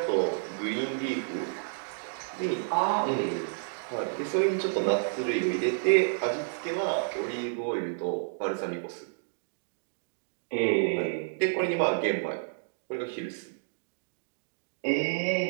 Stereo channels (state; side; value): silent; left; digital silence